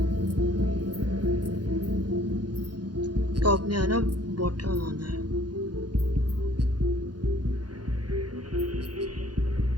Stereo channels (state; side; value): late; left; 0.70 ms